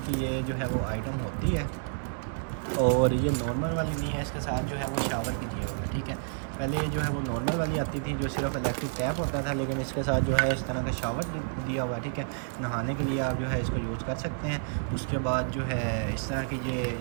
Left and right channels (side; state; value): left; silent; 58 dB below the other